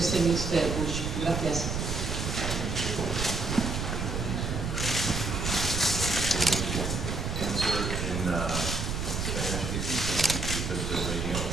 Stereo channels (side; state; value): right; noise; rumble, 2 dB below the sound